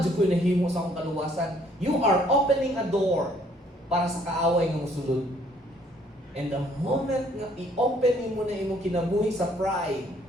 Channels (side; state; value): both; normal; correlation 0.63